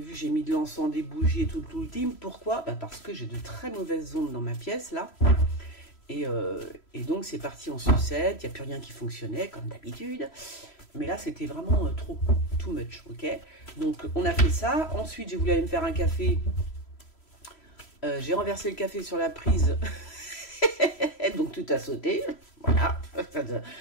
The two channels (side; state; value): right; late; 3.0 ms